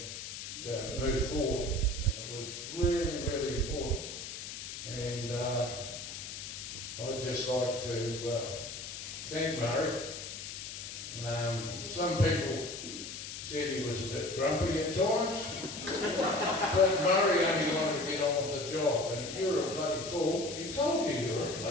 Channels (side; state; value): left; noise; hiss, 8 dB below the sound